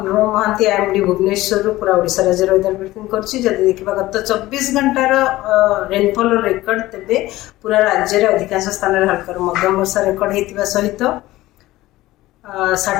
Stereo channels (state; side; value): quieter; right; 17.2 dB